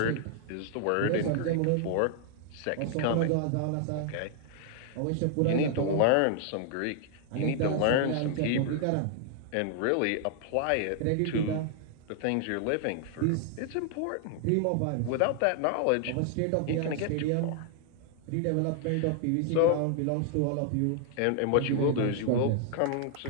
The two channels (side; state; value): both; different; correlation 0.00